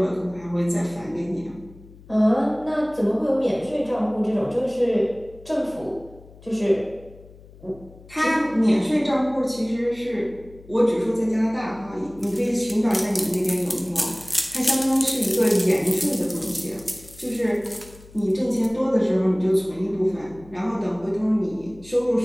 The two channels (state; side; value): noise; left; hum, 22 dB below the sound